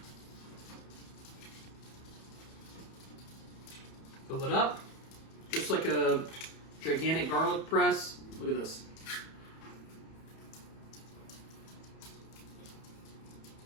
fill it up, just like a gigantic garlic press. Look at this.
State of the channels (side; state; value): right; late; 31 ms